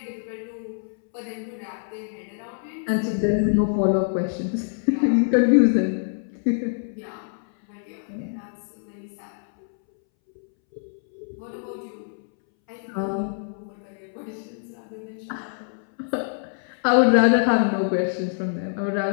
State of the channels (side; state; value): right; silent; 62 dB below the other